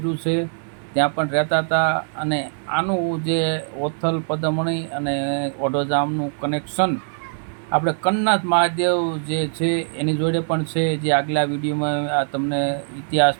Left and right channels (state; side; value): silent; left; 62 dB below the other